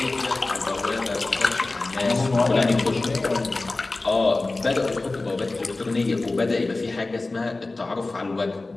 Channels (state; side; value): quieter; right; 3.2 dB